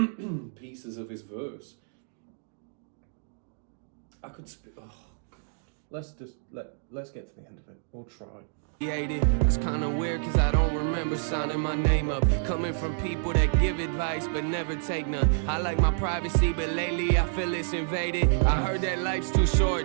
pieces of his verse. I could oh God. Let's get to the end of it. We'll try. That's kinda weird, cause I don't remember signing my name up. Coming from people that give advice but never take none. I like my privacy, but lately I feel it's invaded. I heard that life's too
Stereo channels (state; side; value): silent; left; digital silence